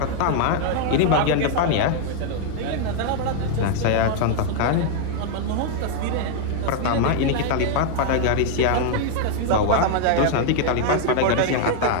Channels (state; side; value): different; both; correlation 0.00